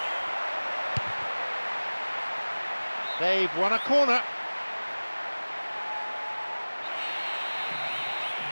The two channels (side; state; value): both; inverted; correlation -1.00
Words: They've won a corner.